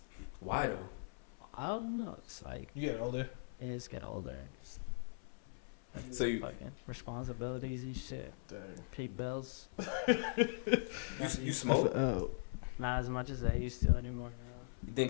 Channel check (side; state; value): right; silent; 51 dB below the other